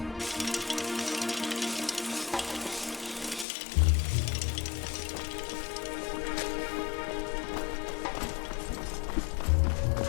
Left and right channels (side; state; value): right; drops out; at 3.5 s